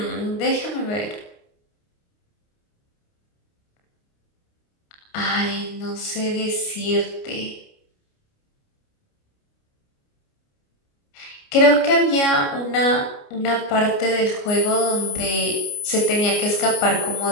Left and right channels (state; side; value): late; right; 29 ms